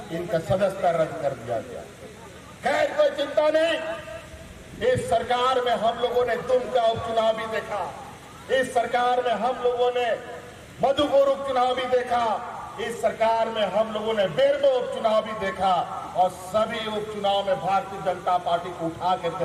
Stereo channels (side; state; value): both; identical; correlation 1.00